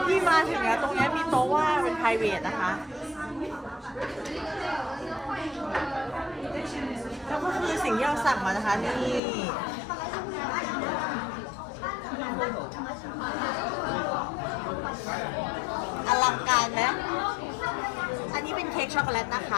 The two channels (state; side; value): drops out; right; at 9.2 s